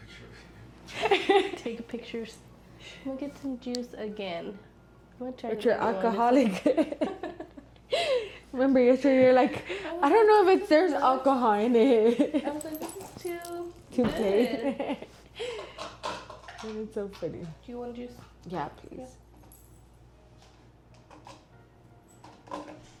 of you. Take pictures. I'm gonna get some juice again. I'm gonna try. But you're alcoholic. Remember yesterday you're like, I don't know if there's alcohol in it. I was like, this is too Too good. plain. It's so funny. Do you want juice? Yeah, please.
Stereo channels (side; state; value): both; identical; correlation 1.00